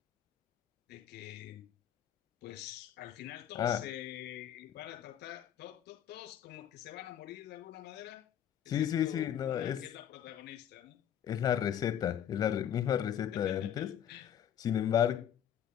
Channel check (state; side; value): quieter; right; 9.8 dB